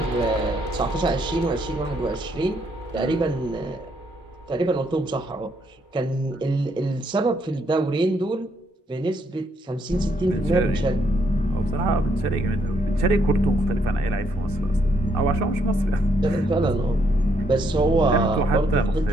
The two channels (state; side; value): normal; both; correlation 0.73